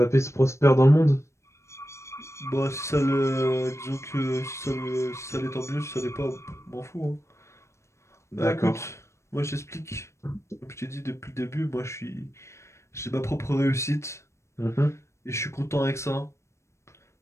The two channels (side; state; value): right; late; 0.13 ms